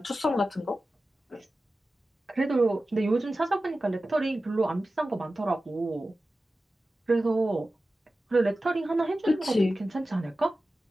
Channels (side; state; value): both; normal; correlation 0.95